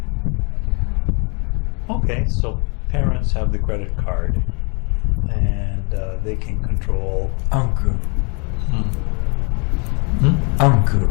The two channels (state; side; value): quieter; right; 34.1 dB